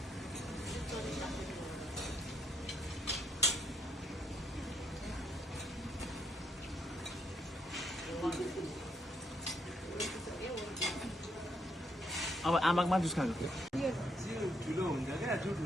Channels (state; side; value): normal; both; correlation 0.74